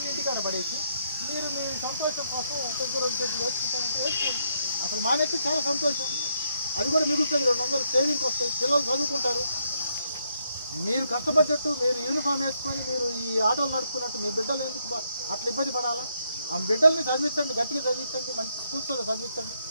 ఇంటికాడ పడేసి మీరు మీ సంతోషం కోసం దగ్గర వేసుకుంటారంటే వేసుకోండి. అసలు మానేస్తే చాలా సంతోషం. అది కూడా మిగులుతుంది. 200 సేవింగ్కి వస్తాయి, పిల్లలు చదువుకుంటారు. మీరు కష్టపడ్డట్టు మీరు యూనిఫామ్ వేసుకొని మీరు ఈ ఆటోలు నడుపుకున్నట్టు మీ బిడ్డలు ఎందుకు అట్లా ఇబ్బంది పడాలా? ఆ బిడ్డల్ని చదివించండి, గట్టిగా చదివించండి, మంచి స్కూల్స్లో చదివించండి.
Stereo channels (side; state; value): both; inverted; correlation -0.76